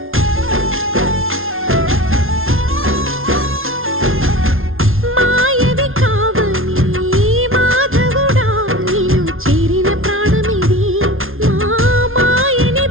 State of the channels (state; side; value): late; left; 0.61 ms